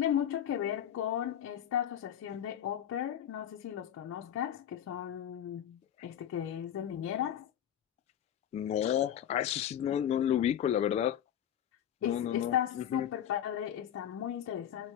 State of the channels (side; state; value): right; quieter; 10.1 dB